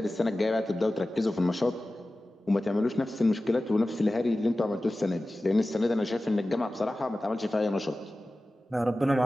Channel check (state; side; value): normal; both; correlation 0.96